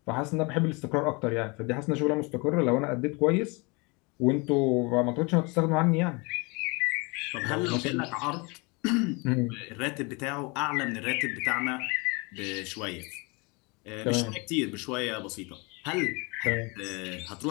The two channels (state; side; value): quieter; right; 28.8 dB